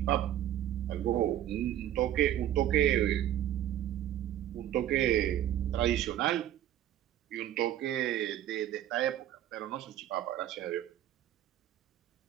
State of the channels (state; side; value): quieter; left; 12.0 dB